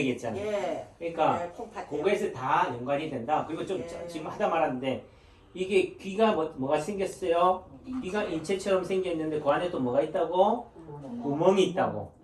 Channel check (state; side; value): identical; both; correlation 1.00